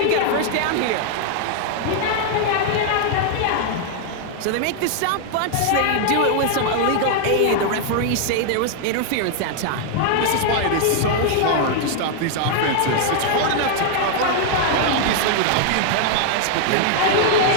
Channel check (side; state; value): both; different; correlation 0.00